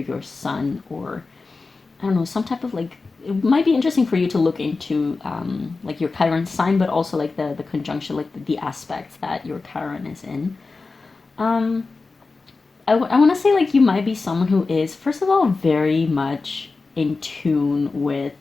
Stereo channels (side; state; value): right; quieter; 4.0 dB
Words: sun or I don't know, some type of like, it might be interesting for you to look into like your Chiron sign, but also like the conjunction, like the aspects that your Chiron is in. Um, I want to say like you might be someone who is, first of all, very much in tune with